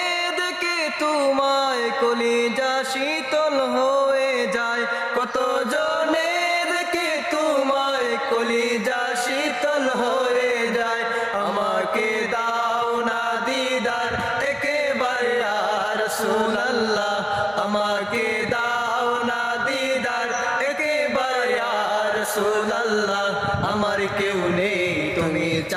দেখে তোমায় কলিজা শীতল হয়ে যায়, কত জনে দেখে তোমায় কলিজা শীতল হয়ে যায়। আমাকে দাও না দিদার একেবারে ইয়া রাসূলুল্লাহ, আমাকে দাও না দিদার একেবারে ইয়া রাসূলুল্লাহ। আমার কেউ নেই তুমি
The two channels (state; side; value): identical; both; correlation 1.00